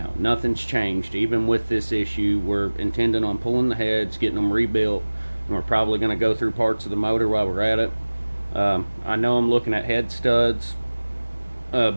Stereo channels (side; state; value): both; inverted; correlation -1.00